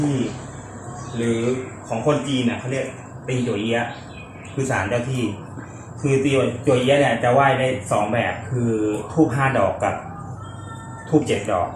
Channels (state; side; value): identical; both; correlation 1.00